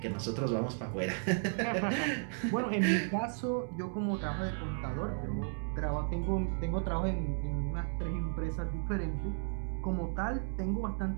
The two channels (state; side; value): silent; left; 55 dB below the other